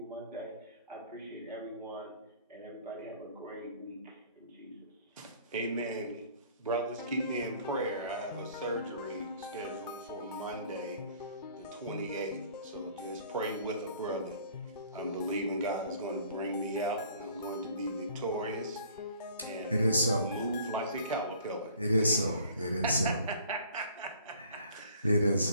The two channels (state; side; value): inverted; both; correlation -0.54